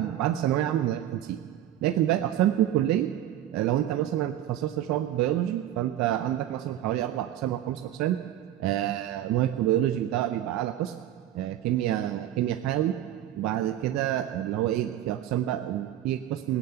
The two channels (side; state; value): left; quieter; 12.2 dB